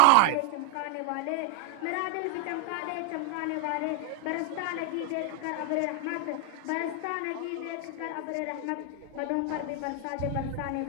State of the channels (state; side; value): different; both; correlation 0.01